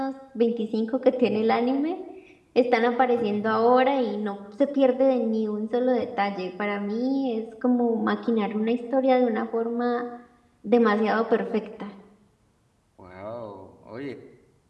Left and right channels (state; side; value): identical; both; correlation 1.00